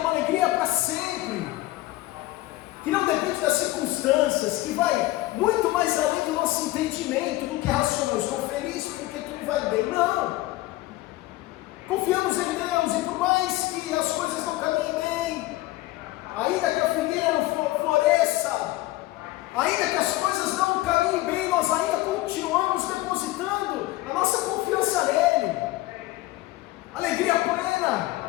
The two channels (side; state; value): right; quieter; 17.9 dB